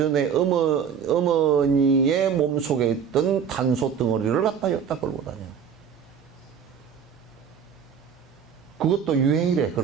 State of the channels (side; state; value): left; quieter; 7.3 dB